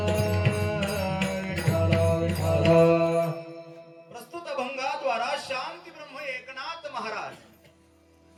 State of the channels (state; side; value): identical; both; correlation 1.00